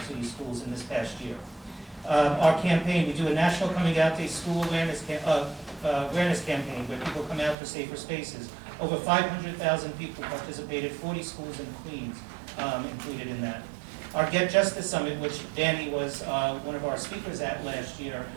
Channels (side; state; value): left; drops out; at 7.6 s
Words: City schools in this past year. Our campaign, we do a National Coming Out Day school awareness campaign where people come out for safer spaces. Over 500,000 people participated, 40 schools in Queens included in that. Our Get Justice Summit, which Danny was one of our speakers at last year,